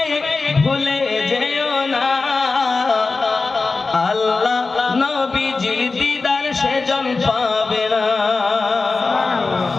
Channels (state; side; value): quieter; right; 3.9 dB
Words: ভুলে যেও না, আল্লাহ নবীজির দিদার সেজন পাবে না।